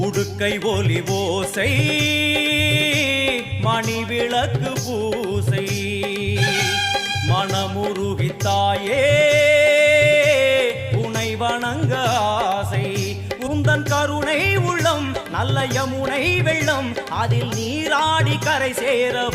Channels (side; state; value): both; identical; correlation 1.00